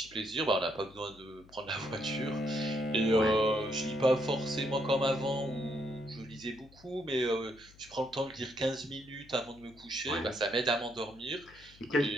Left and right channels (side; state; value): left; noise; hum, 24 dB below the sound